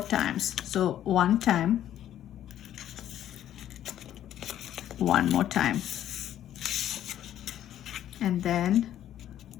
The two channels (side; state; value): right; quieter; 11.5 dB